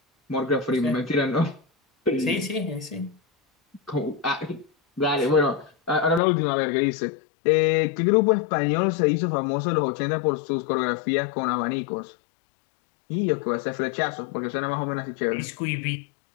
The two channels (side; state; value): right; drops out; at 6.2 s